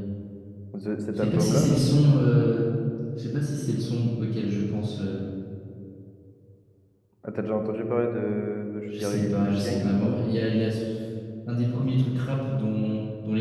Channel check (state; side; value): identical; both; correlation 1.00